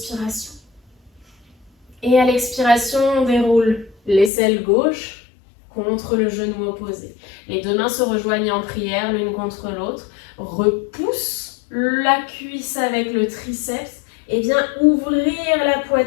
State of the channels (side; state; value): right; drops out; at 4.3 s